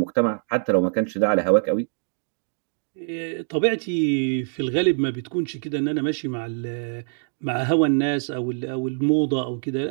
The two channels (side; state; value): left; silent; digital silence